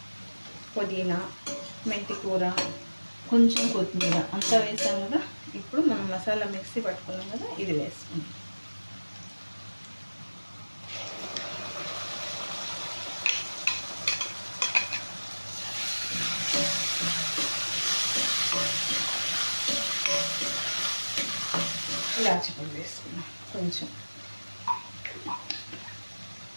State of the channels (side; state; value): both; inverted; correlation -1.00